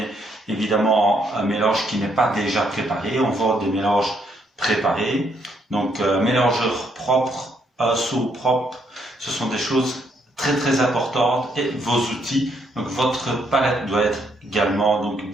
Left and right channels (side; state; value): both; normal; correlation 0.72